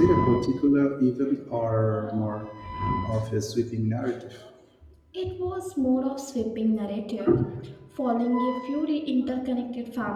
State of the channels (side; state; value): both; identical; correlation 1.00